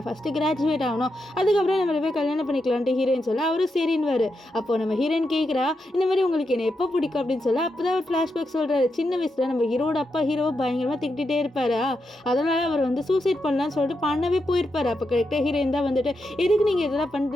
ஃபஸ்ட்டு கிராஜுவேட் ஆகணும், அதுக்கப்புறம் நம்ம போய் கல்யாணம் பண்ணிக்கலான்ட்டு ஹீரோயின் சொல்ல அவரும் சரின்னுவார். அப்போது நம்ம ஹீரோயின் கேட்குறா, இந்த மாதிரி உங்களுக்கு என்ன எப்போ பிடிக்கும் அப்படின்னு சொல்ல அப்போ தான் ஒரு ஃப்ளாஷ்பேக் சொல்கிறாரு. சின்ன வயசில் நம்ம ஹீரோட அப்பா ஹீரோவை பயங்கரமாக திட்டிகிட்டே இருப்பாரா, அதனால் அவர் வந்து சூசைட் பண்ணலான்னு சொல்லிட்டு பண்ணவே போயிருப்பார். அப்போ கரெக்டாக ஹீரோயின் தான் வந்துட்டு எதுக்கு நீங்கள் இதெல்லாம்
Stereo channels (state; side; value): normal; both; correlation 0.85